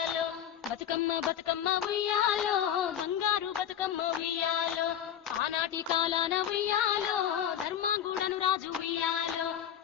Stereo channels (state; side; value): quieter; right; 9.9 dB